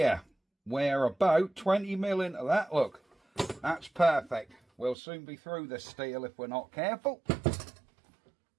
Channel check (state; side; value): drops out; left; at 5.0 s